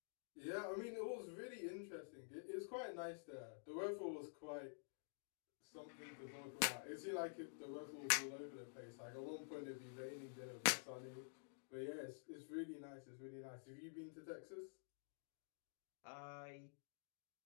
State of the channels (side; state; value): right; silent; digital silence